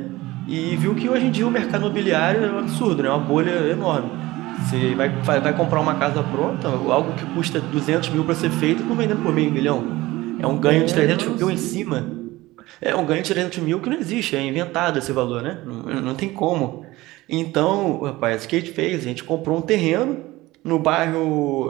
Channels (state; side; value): quieter; left; 18.9 dB